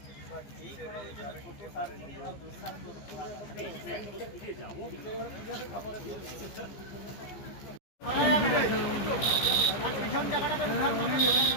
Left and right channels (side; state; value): right; late; 15 ms